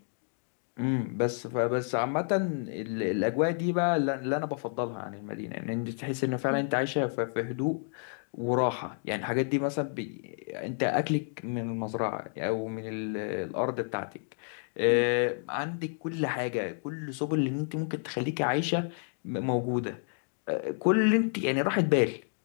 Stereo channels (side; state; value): right; silent; 58 dB below the other